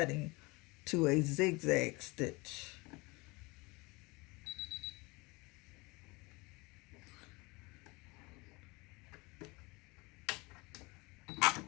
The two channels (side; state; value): right; quieter; 25.2 dB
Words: to a zigzag stitch.